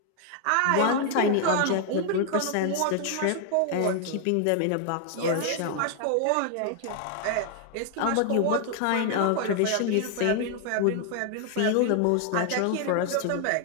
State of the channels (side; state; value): both; different; correlation 0.00